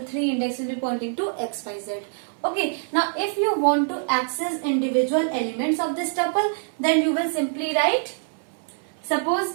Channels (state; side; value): silent; left; 61 dB below the other